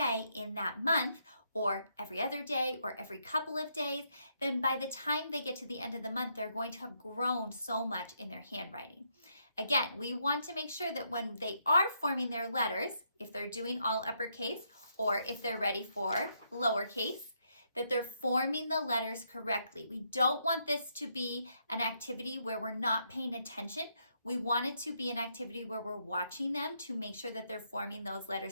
in that month, or every other day, or every couple of days, then by the time they get to the end of the month, they're going to have grown so much in their handwriting. Again, we want to make sure that when they are forming their letters, if they're doing all uppercase, or if they're ready for lowercase, that they're forming the letters correctly. We don't want this to be an activity where we're not paying attention. We want it to be an activity where we're watching them to make sure that they're forming those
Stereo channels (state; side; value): inverted; both; correlation -0.76